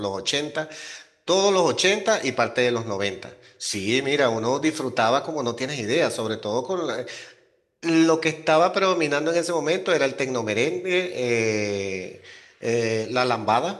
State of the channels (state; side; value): identical; both; correlation 1.00